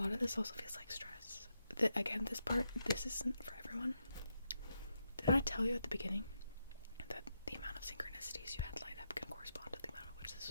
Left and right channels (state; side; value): inverted; both; correlation -0.83